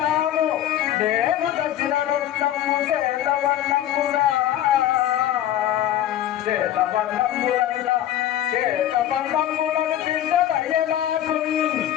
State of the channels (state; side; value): quieter; right; 12.1 dB